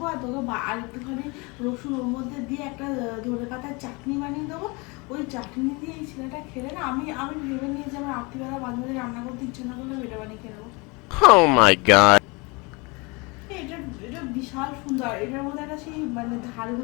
আর তোকে আর একটুখানি রসুন ওর মধ্যে দিয়ে একটা ধনে পাতার চাটনি বানিয়ে দেবো। ওই চাটনি দিয়ে এই ছেলেটা খেলে না, আমি ভেবে নিয়ে যে আমার রাত্রিবেলা মাঝে মাঝে রান্না করতে ইচ্ছে না করলে এটা বানিয়ে খেয়ে নেবো। Oh my god. এটা বিশাল সুন্দর। এটার মধ্যে একটা সেই মানে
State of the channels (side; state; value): right; quieter; 27.6 dB